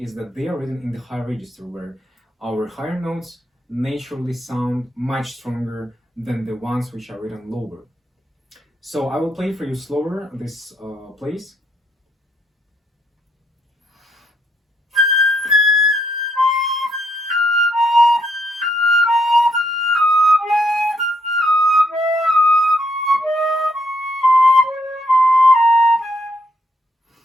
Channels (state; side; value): normal; both; correlation 0.75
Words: is that they are written in the high register, where our higher notes naturally sound much stronger than the ones which are written lower. So I will play for you slower this place.